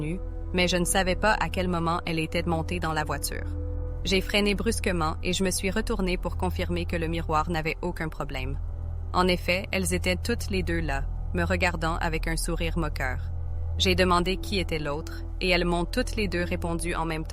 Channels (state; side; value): identical; both; correlation 1.00